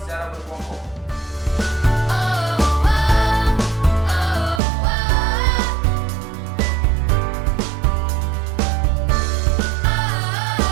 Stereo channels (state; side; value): drops out; left; at 4.6 s